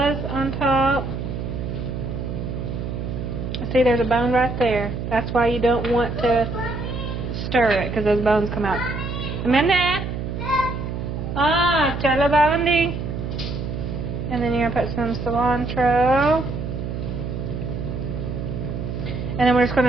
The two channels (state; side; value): noise; right; hum, 5 dB below the sound